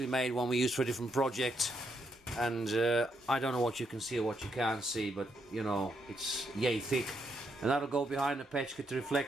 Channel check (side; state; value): both; normal; correlation 0.78